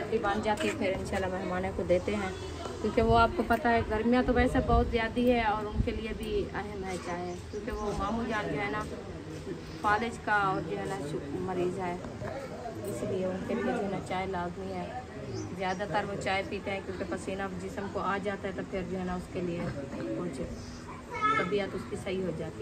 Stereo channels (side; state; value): both; identical; correlation 1.00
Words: बन जाती है, फिर इंशाल्लाह मेहमानों को देते हैं, क्योंकि वो आपको पता है गर्मियाँ तो वैसे बहुत ज़्यादा है और उनके लिए भी अहम है चाय, क्योंकि वो मामू जान जो है ना फालिज का और जो है ना मरीज़ है, इसलिए उनके लिए जो है ना चाय लाजमी है। ज़्यादातर वो चाय पीते हैं क्योंकि पसीना जिस्म को आ जाता है, तो फिर जो है ना उसके लिए कुछ तबीयत उसकी सही हो